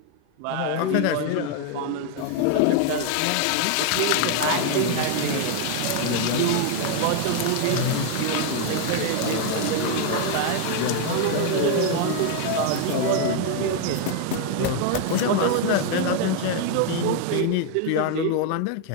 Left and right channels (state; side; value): different; both; correlation 0.01